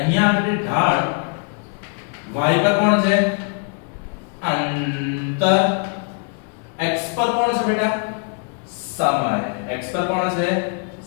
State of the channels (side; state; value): right; quieter; 39.0 dB